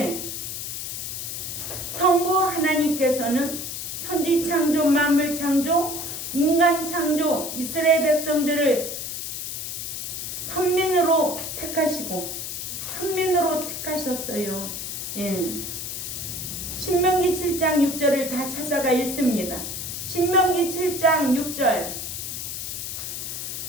성부 하나님께서는 천지 창조, 만물 창조, 인간 창조, 이스라엘 백성들을 선민으로 택하시고 선민으로 택하셨어요. 예. 신명기 7장 6절을 다 찾아가 읽습니다. 신명기 7장 6절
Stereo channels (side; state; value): left; noise; hiss, 5 dB below the sound